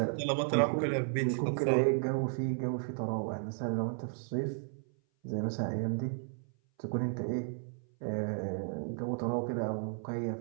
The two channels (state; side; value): silent; left; 55 dB below the other